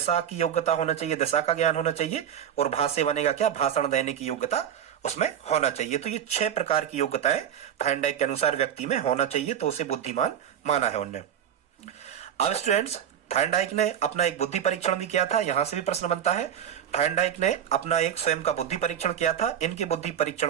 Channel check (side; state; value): left; quieter; 9.3 dB